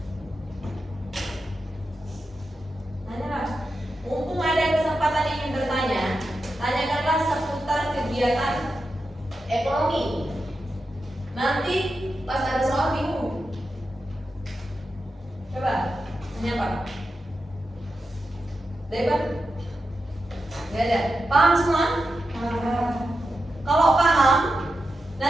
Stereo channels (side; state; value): both; normal; correlation 0.89